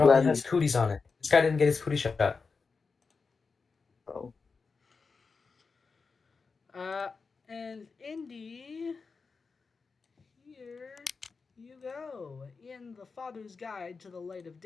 gladly. has cooties on it. This guy didn't get his cootie shot. Oh. And Indy, here you go. In the Father's Guide to the Light of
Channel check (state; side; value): quieter; right; 4.7 dB